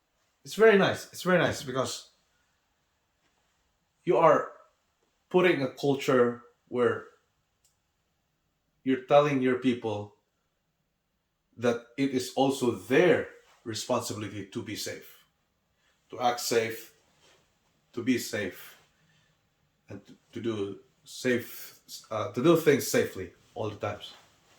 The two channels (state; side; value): identical; both; correlation 1.00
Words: It's very nice. It's very nice because you are putting a culture where you're telling your people that it is also their responsibility to be safe, to act safe, to be safe, and to do safe, to do things safely all the times.